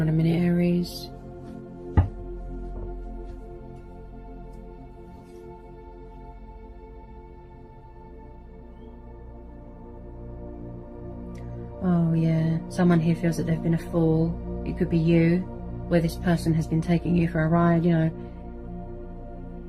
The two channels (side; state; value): both; identical; correlation 1.00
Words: on a minute, Aries. Oh yeah, someone here feels that they've been a fool. It could be you, where this person has been taking you for a ride, you know.